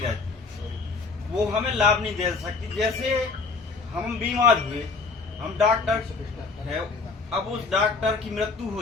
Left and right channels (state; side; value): quieter; right; 4.3 dB